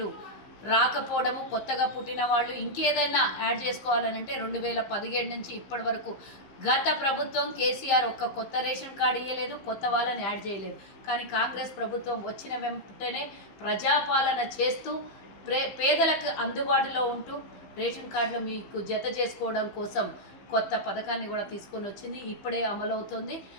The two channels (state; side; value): late; right; 15 ms